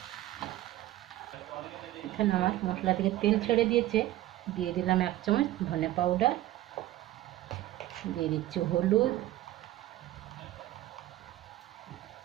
এখানে আমার মশলা থেকে তেল ছেড়ে দিয়েছে, দিয়ে দিলাম 1 চামচ ধনে পাউডার, দিয়ে দিচ্ছি হলুদ,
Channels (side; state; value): left; quieter; 15.1 dB